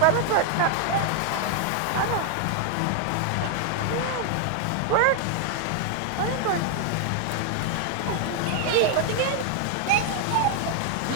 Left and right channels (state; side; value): different; both; correlation 0.00